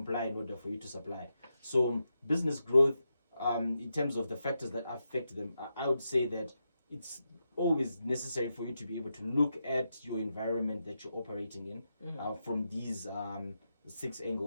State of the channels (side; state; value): both; inverted; correlation -0.87